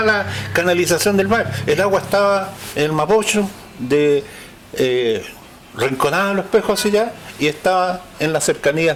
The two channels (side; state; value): both; identical; correlation 1.00